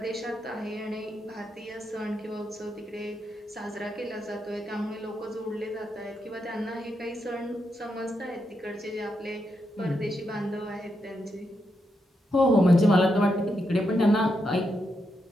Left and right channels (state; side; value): normal; both; correlation 0.83